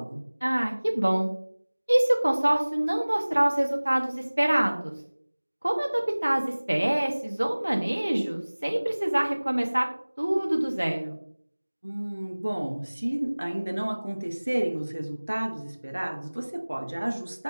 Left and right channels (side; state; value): both; inverted; correlation -1.00